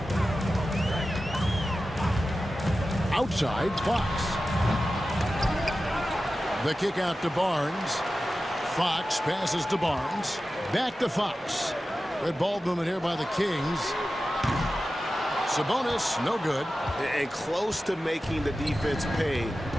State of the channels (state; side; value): normal; both; correlation 0.94